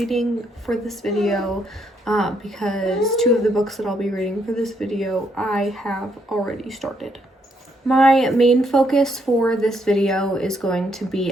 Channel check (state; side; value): normal; both; correlation 0.74